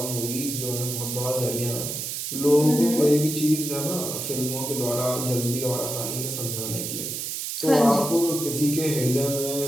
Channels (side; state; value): right; noise; hiss, 4 dB below the sound